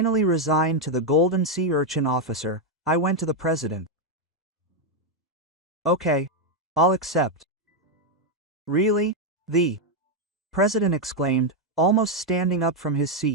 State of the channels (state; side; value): normal; both; correlation 0.02